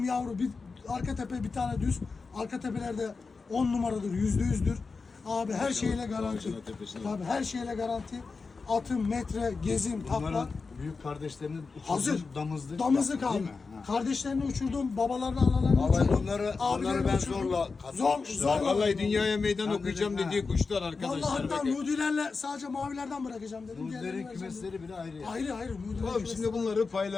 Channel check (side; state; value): right; quieter; 4.5 dB